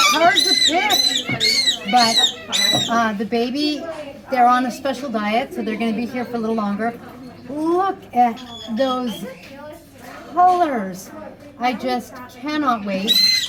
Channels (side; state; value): both; identical; correlation 1.00